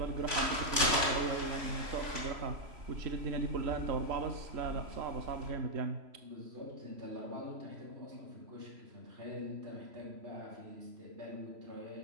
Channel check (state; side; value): late; left; 3.1 ms